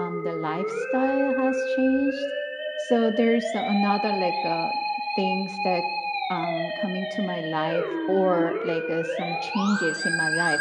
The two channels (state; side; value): identical; both; correlation 1.00